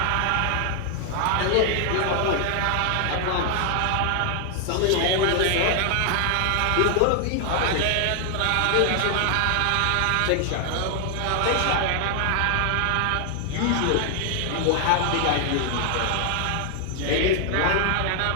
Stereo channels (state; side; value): different; both; correlation 0.00